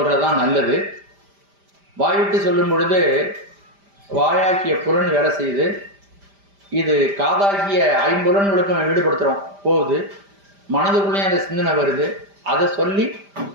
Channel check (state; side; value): late; left; 5.0 ms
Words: நல்லது. வாய்விட்டு சொல்லும் பொழுது வாயாக்கிய புலன் வேலை செய்யுது. இது காதாகிய 5 புலன்களுக்கும் ஈடுபடுத்துறோம் போகுது. மனதுக்குள்ளேயும் அந்த சிந்தனை வருது. அதை சொல்லி